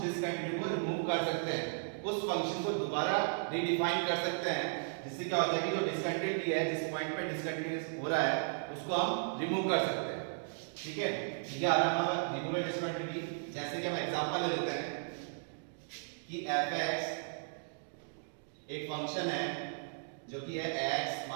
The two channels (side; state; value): left; silent; digital silence